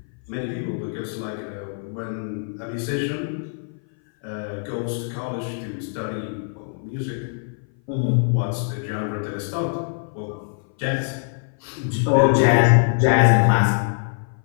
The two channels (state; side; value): silent; right; 58 dB below the other